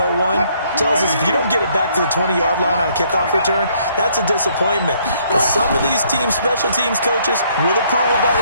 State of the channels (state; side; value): inverted; both; correlation -0.66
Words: tells us if you don't get it back to the 20-yard line on a kickoff return, that's a disappointment. But some of these teams, special teams coaches, with approval by